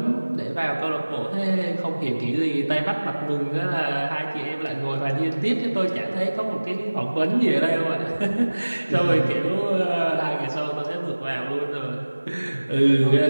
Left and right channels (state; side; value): inverted; both; correlation -1.00